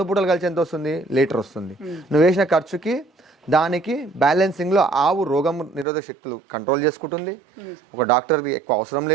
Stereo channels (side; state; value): left; drops out; at 5.9 s